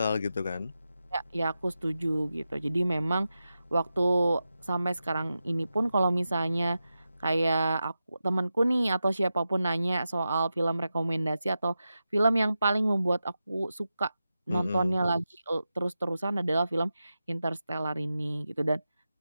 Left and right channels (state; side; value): inverted; both; correlation -0.91